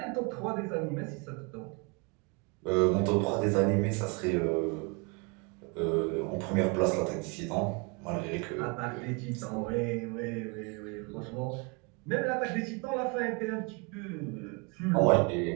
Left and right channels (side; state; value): left; quieter; 31.2 dB